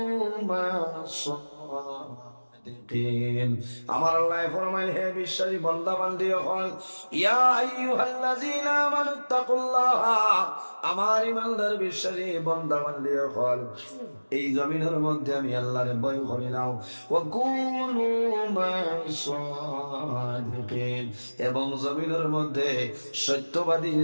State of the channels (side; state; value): both; inverted; correlation -1.00